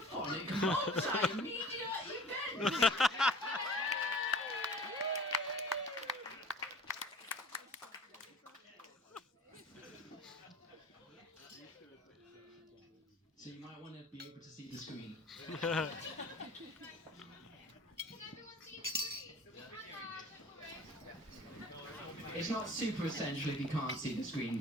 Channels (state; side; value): normal; both; correlation 0.44